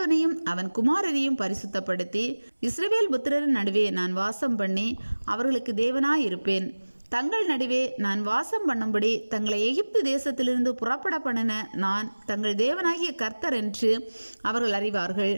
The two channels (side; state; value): both; inverted; correlation -1.00